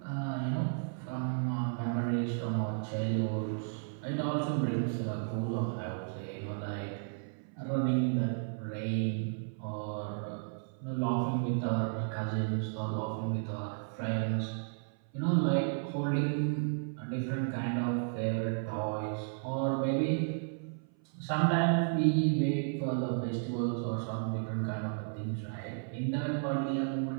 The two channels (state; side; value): silent; left; 55 dB below the other